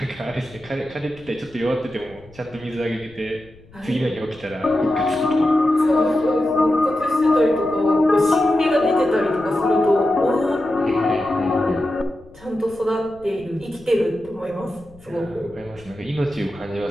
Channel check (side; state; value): left; noise; rumble, 24 dB below the sound